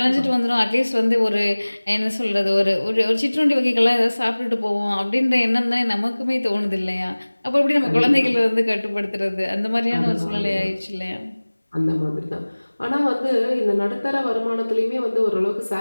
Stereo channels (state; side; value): inverted; both; correlation -1.00